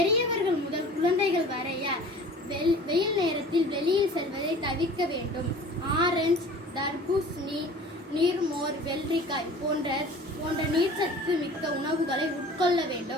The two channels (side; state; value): both; normal; correlation 0.44